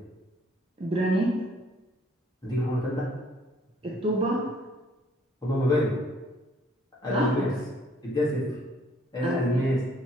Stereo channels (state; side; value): normal; both; correlation 0.62